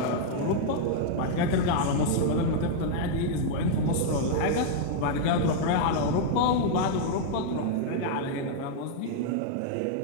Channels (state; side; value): different; both; correlation -0.01